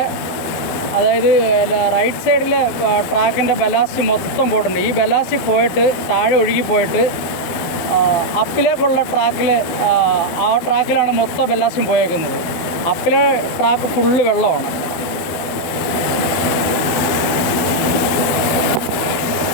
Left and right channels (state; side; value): late; right; 12 ms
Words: അതായത് റൈറ്റ് സൈഡിലെ ട്രാക്കിൻ്റെ ബലാസ്റ്റ് മൊത്തം പോയിട്ടുണ്ട്. ഈ ബലാസ്റ്റ് പോയിട്ട് താഴെ ഒഴുകി പോയിട്ട് അപ്പിലേക്കുള്ള ട്രാക്കിൽ, ആ ട്രാക്കിലാണ് മൊത്തം ബലാസ്റ്റും പോയേക്കുന്നത്. അപ്പിലെ ട്രാക്ക് ഫുള്ള് വെള്ളമാണ്.